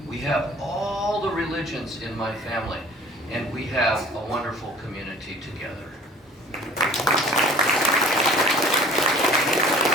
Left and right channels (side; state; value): both; normal; correlation 0.48